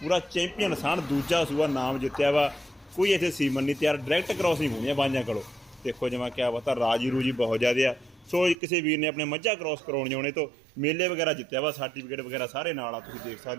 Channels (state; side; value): drops out; left; at 8.6 s